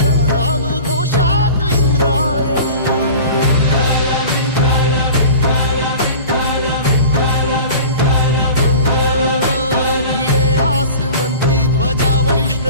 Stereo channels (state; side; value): inverted; both; correlation -0.39